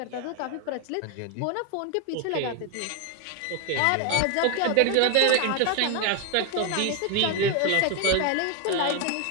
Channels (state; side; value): different; both; correlation 0.01